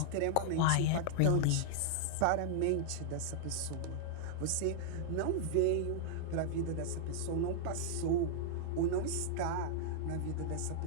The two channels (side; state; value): both; different; correlation -0.01